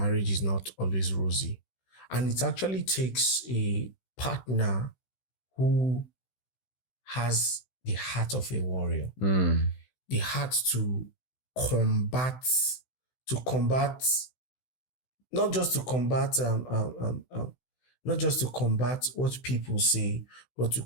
is not always rosy. And it actually takes a partner who has the heart of a warrior, the heart to combat, not just to combat what people say, but to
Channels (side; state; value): right; late; 16 ms